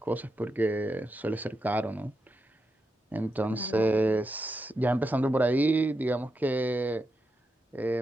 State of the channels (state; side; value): normal; both; correlation 0.86